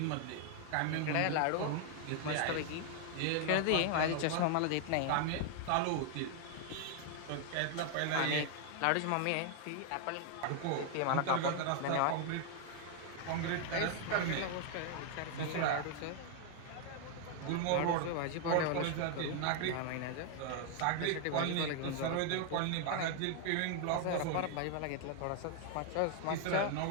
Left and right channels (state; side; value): different; both; correlation 0.00